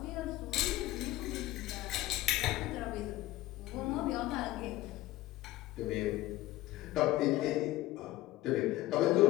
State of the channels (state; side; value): quieter; right; 16.6 dB